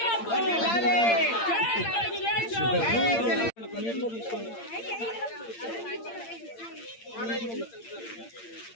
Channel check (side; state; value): right; late; 8.7 ms